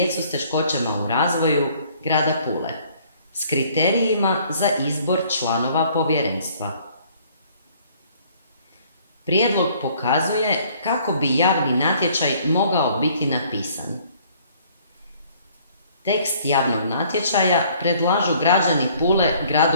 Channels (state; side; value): inverted; both; correlation -0.59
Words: s teškoćama u razvoju grada Pule s kriterijima za izbor članova povjerenstva. Prijedlog pokazuje kako bi javni natječaj mogao biti napisan. Tekst javnog natječaja predlažu građani Pule